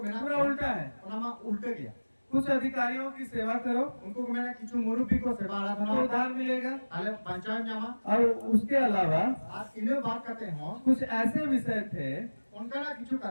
बिना पूरा उल्टा है। ओनामा उल्टे गया कुछ अधिकारियों की सेवा करो उनको मैंने किचु मुरुबी को सेवा तो आराधना उद्धार मिलेगा आले पंचायत जामा और उसके अलावा आज इन्हें बात करते हो कुछ ऐसे विषय थे उनका ना किचु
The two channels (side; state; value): both; inverted; correlation -1.00